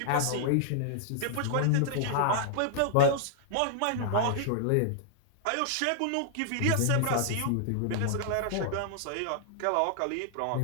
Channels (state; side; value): different; both; correlation -0.01